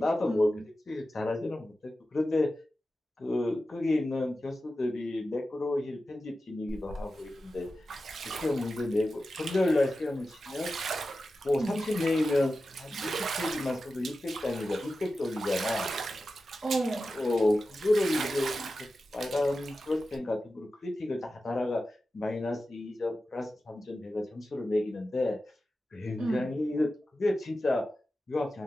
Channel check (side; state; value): both; normal; correlation 0.93